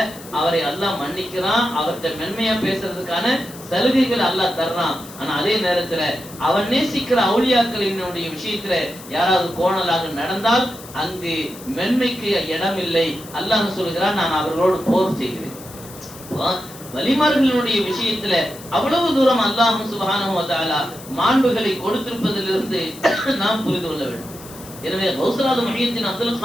அவரை அல்லாஹ் மன்னிக்கிறான், அவர்கிட்ட மென்மையா பேசுறதுக்கான சலுகைகள் அல்லாஹ் தர்றான். ஆனா அதே நேரத்துல அவன் நேசிக்கிற அவுலியாக்களினுடைய விஷயத்துல யாராவது கோணலாக நடந்தால் அங்கு மென்மைக்கு இடம் இல்லை. அல்லாஹ் சொல்கிறான், நான் அவர்களோடு போர் செய்கிறேன். வலிமார்களுடைய விஷயத்துல அவ்வளவு தூரம் அல்லாஹ் சுப்ஹானஹு வ தஆலா மாண்புகளை கொடுத்திருப்பதிலிருந்து நாம் புரிந்து கொள்ள வேண்டும். எனவே கௌஸுல் முஹியத்தீன் அப்துல்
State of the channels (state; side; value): noise; left; hiss, 17 dB below the sound